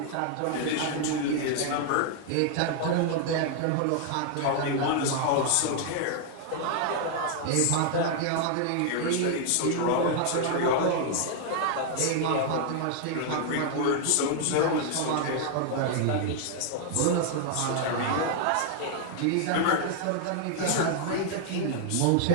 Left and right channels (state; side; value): different; both; correlation 0.00